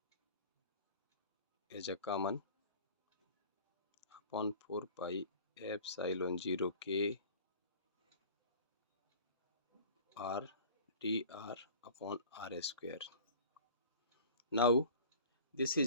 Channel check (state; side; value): inverted; both; correlation -0.43